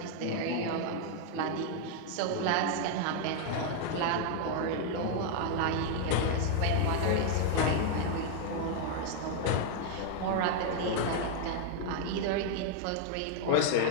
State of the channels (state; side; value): different; both; correlation 0.01